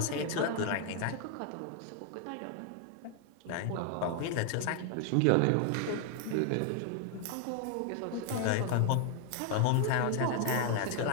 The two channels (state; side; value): different; both; correlation 0.00